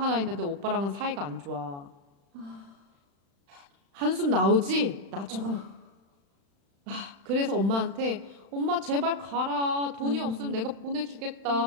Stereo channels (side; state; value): left; late; 35 ms